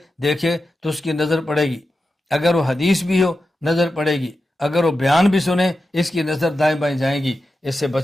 دیکھے تو اس کی نظر پڑے گی، اگر وہ حدیث بھی ہو نظر پڑے گی، اگر وہ بیان بھی سنے اس کی نظر دائیں بائیں جائیں گی۔ اس سے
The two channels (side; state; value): both; normal; correlation 0.91